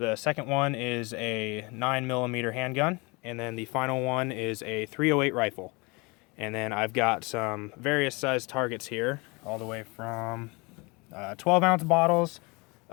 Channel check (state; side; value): quieter; right; 27.3 dB